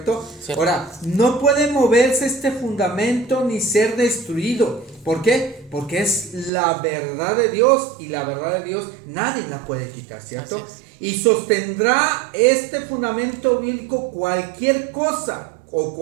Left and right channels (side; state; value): left; drops out; at 6.5 s